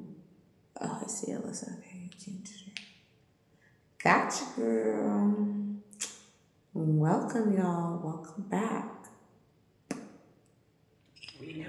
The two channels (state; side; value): identical; both; correlation 1.00